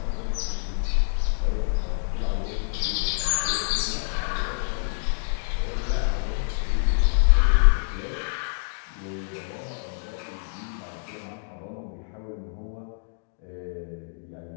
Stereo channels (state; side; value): silent; right; digital silence